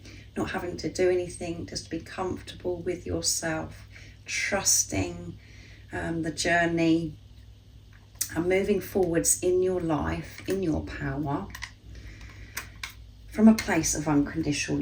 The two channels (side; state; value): both; identical; correlation 1.00